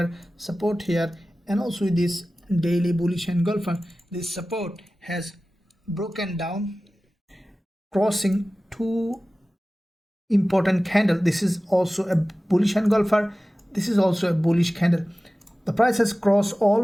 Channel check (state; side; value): normal; both; correlation 0.96